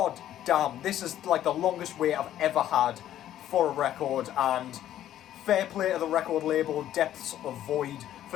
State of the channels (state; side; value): quieter; right; 11.9 dB